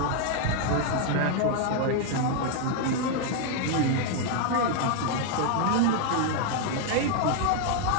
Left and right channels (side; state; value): both; different; correlation 0.00